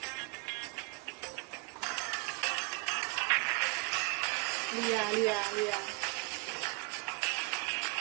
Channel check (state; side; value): quieter; left; 31.6 dB